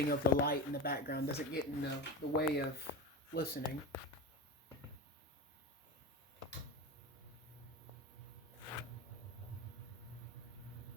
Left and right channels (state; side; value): normal; both; correlation 0.23